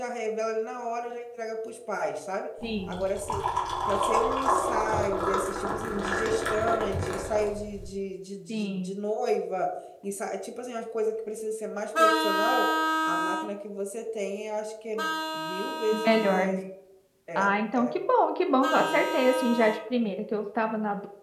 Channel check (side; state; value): both; identical; correlation 1.00